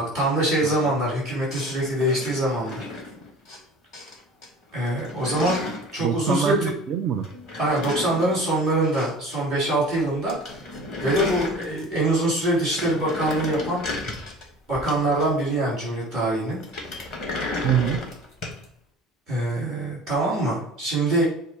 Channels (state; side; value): normal; both; correlation 0.42